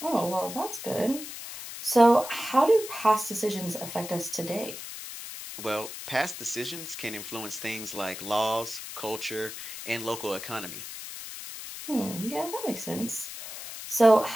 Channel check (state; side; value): noise; left; hiss, 10 dB below the sound